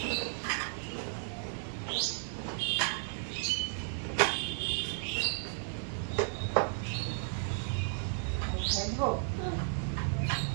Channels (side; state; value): left; silent; digital silence